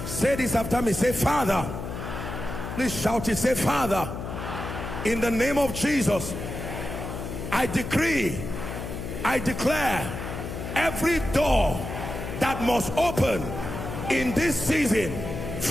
Say this after me. Say, Father. Please shout it. Say, Father, in the name of Jesus, I decree, I declare, every door that must open in this season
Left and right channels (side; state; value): left; noise; hum, 6 dB below the sound